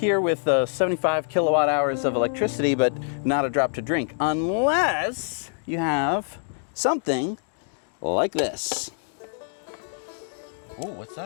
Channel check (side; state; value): right; silent; digital silence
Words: with 75 kilowatt hours of electricity, but not a drop to drink, unless you have something like this. Ooh, what's